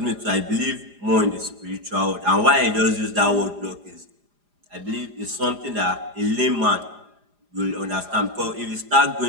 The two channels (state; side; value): late; left; 4.9 ms